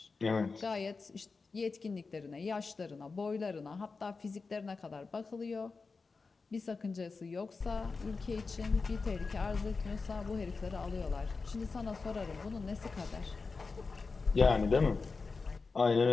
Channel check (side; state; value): right; quieter; 4.3 dB